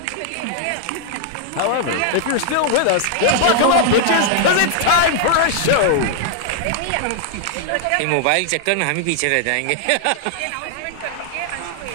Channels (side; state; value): both; different; correlation -0.01